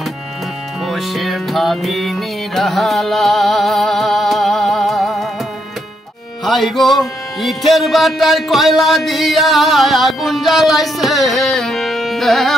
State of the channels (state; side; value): normal; both; correlation 0.77